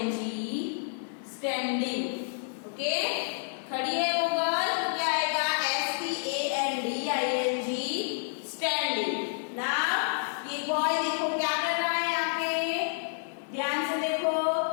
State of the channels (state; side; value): silent; right; digital silence